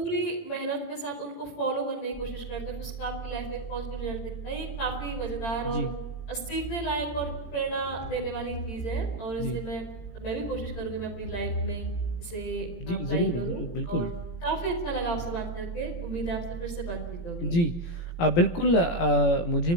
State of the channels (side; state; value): right; late; 18 ms